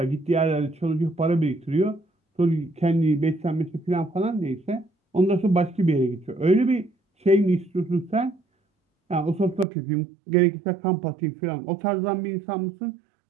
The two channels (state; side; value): drops out; left; at 9.7 s